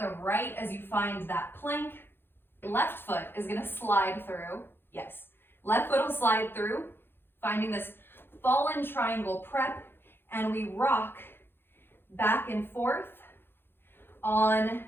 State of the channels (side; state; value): right; late; 0.10 ms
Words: right as you find that plank. Left foot is going to slide through. Yes, left foot will slide through, finding this fallen triangle prep, and we rock back and forth on